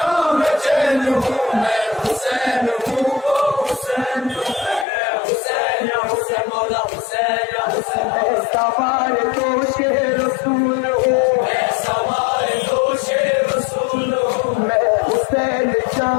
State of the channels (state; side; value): drops out; right; at 4.9 s